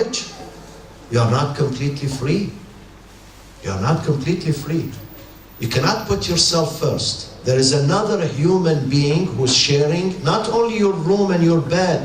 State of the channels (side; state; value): both; identical; correlation 1.00